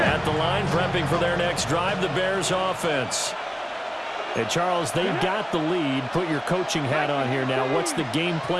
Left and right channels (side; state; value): both; identical; correlation 1.00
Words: At the line, prepping for their next drive, the Bears offense. And, Charles, they've got the lead. Put your coaching hat on here now. What's the game